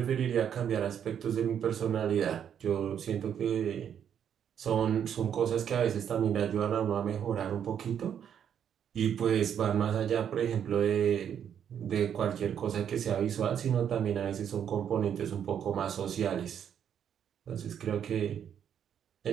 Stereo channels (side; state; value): left; quieter; 8.8 dB